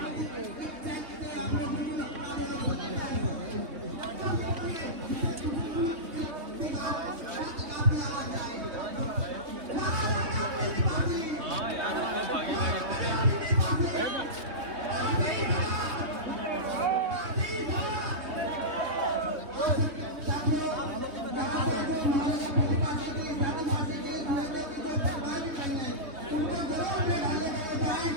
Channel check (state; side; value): late; left; 3.2 ms